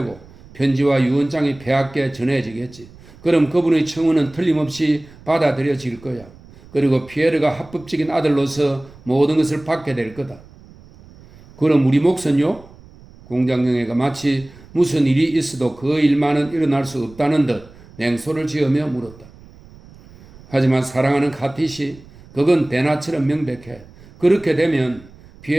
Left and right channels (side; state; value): right; noise; rumble, 22 dB below the sound